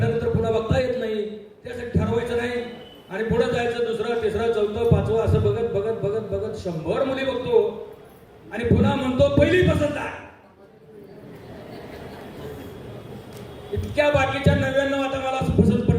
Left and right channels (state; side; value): identical; both; correlation 1.00